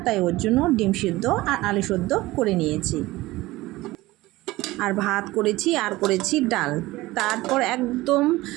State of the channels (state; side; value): quieter; left; 18.8 dB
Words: তাই ওর জন্য ডিম সিদ্ধ আর আলু সিদ্ধ করে নিয়েছি। আর ভাত করেছি আর করেছি ডাল। তারপর একদম